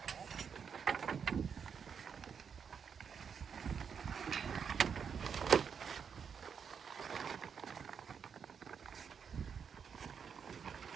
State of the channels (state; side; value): quieter; left; 6.8 dB